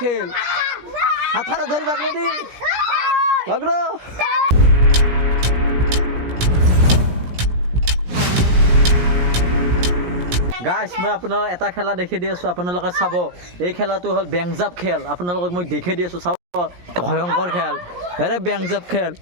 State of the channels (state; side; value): late; left; 17 ms